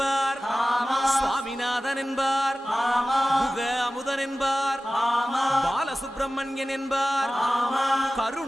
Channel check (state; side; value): normal; both; correlation 0.96